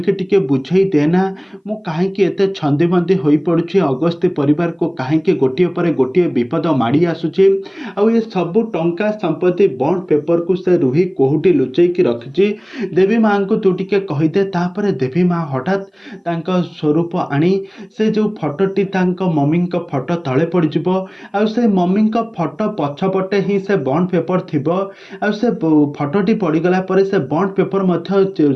टिके बुझे देना मु कहीं एत छंदी बंदी हो पड़ुछि अगस्ती परिवार को कहीं गोटे पर गोटे विपद माड़ी आसुछि ये सबू टंका संपत्ति बॉन्ड पेपर को से रुही कोहुटी लुचेकी रखिछि देवी माँ को तू टिके कहीदे। तापर देवी माँ हठात तांका स्वरूप आनी से जो फटोटी मम्मी फटो तले पड़ଯିबो आ से मम्मी फटो पछपटे ही से बॉन्ड पेपर थिबो आ से फटोटी पड़गला पर से बॉन्ड पेपर मध्य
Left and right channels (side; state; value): both; identical; correlation 1.00